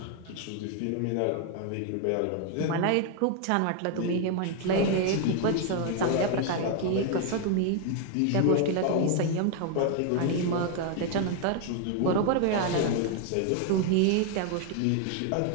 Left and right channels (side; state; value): both; different; correlation 0.00